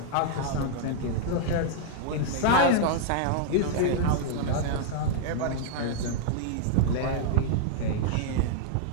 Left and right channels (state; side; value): different; both; correlation -0.01